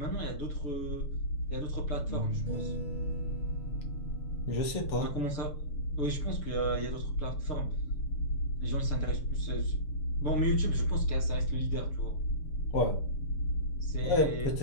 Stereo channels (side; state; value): right; late; 6.9 ms